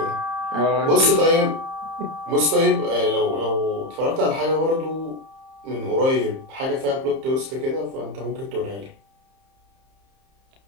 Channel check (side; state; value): left; late; 30 ms